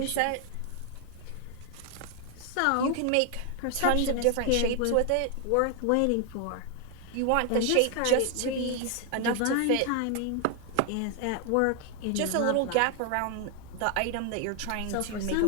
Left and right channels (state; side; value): different; both; correlation 0.00